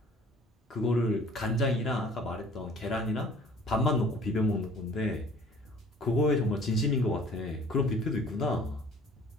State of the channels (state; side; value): normal; both; correlation 0.51